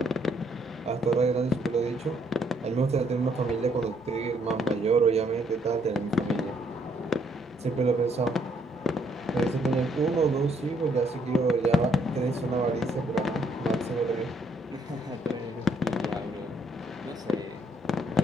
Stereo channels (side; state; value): both; normal; correlation 0.69